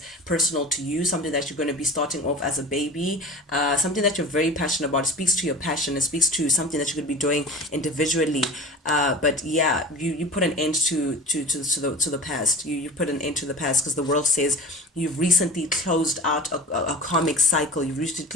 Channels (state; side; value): normal; both; correlation 0.35